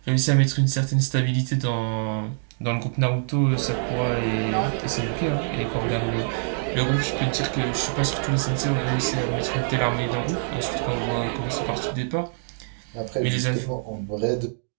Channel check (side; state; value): left; silent; digital silence